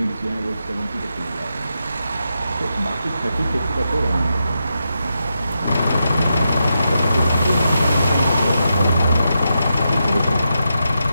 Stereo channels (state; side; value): inverted; both; correlation -0.86